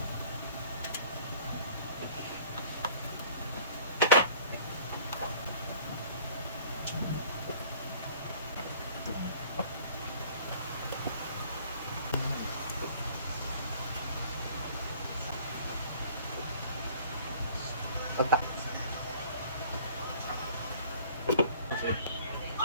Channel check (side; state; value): both; inverted; correlation -0.51